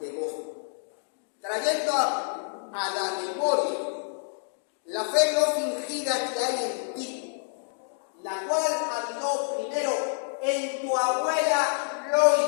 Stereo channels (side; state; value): right; silent; 59 dB below the other